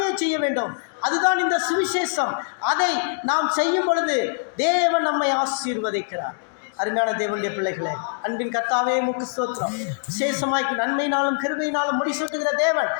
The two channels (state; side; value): silent; right; digital silence